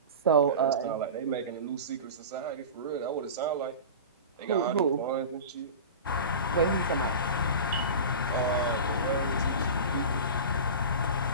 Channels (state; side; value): inverted; both; correlation -0.31